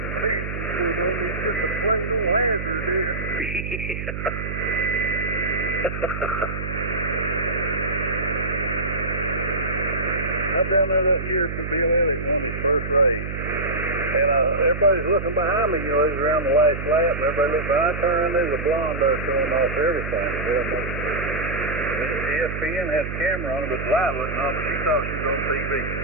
just a plain old hazard, dude. I'm down there that year for Bill Elliott on his first race. And everybody's looking behind me, you know, he's around the last lap, and everybody looks behind. I turn around, there's a blonde there showing off everything. ESPN had a camera on it, but the light wasn't on, but she thought she was on TV.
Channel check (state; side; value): noise; right; hum, 6 dB below the sound